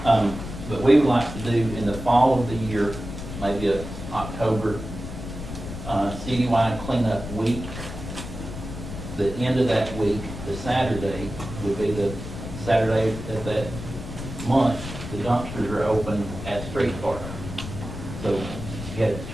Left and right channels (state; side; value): noise; left; rumble, 9 dB below the sound